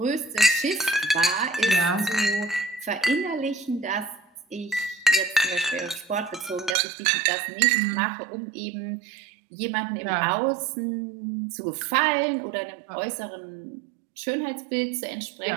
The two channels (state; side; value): drops out; left; at 6.8 s